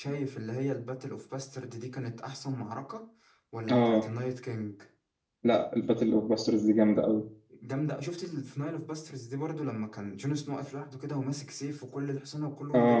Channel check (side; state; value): both; identical; correlation 1.00